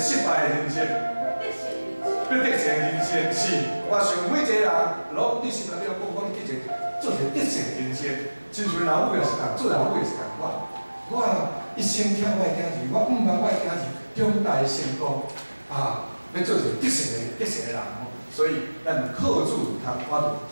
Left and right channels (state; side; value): inverted; both; correlation -1.00